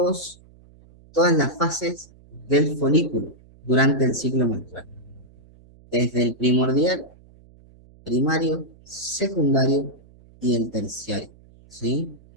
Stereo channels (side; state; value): right; noise; hum, 26 dB below the sound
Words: las fases del folículo durante el ciclo menstrual. Desde el primordial, primario, secundario y el terciario. ¿Sí?